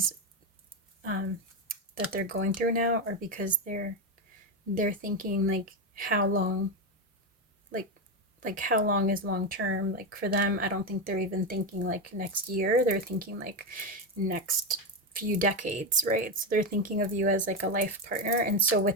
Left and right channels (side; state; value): both; normal; correlation 0.12